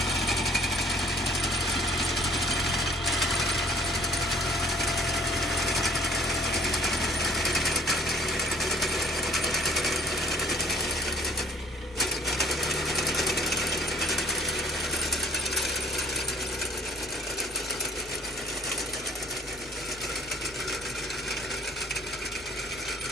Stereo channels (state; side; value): noise; right; hum, 22 dB below the sound